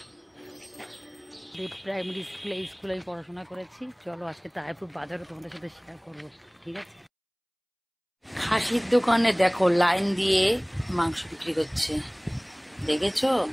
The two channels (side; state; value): both; identical; correlation 1.00